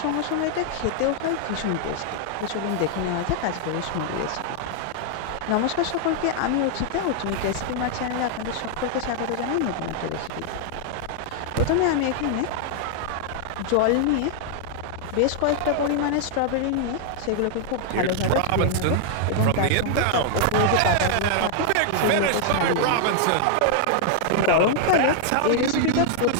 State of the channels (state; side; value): different; both; correlation 0.00